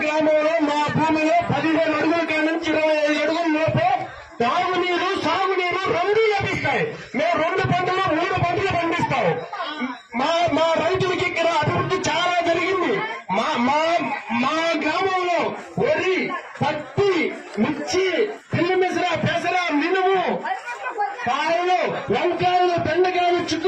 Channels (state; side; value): identical; both; correlation 1.00